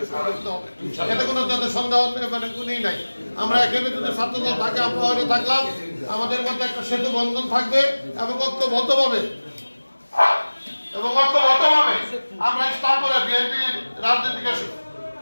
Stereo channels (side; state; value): both; inverted; correlation -1.00